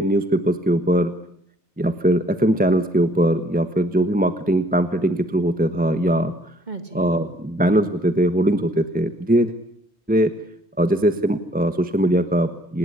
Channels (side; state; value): both; normal; correlation 0.62